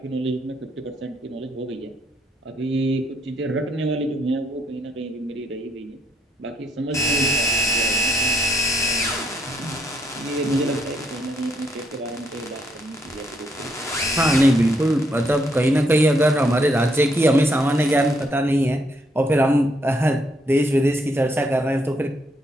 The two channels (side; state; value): both; normal; correlation 0.73